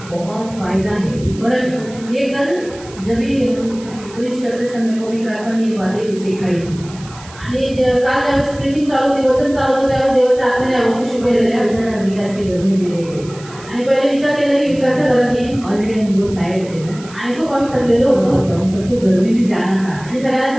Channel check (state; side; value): noise; right; hiss, 19 dB below the sound